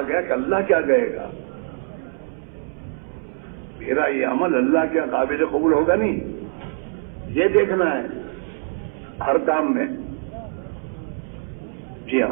گیا کہ اللہ کیا کہے گا، میرا یہ عمل اللہ کے قابل قبول ہوگا نہیں، یہ دیکھنا ہے ہر کام میں۔ جی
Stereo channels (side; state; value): left; silent; 63 dB below the other